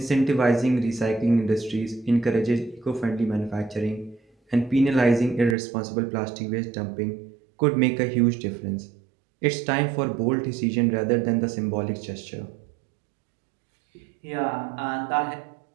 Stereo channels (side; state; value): left; drops out; at 5.6 s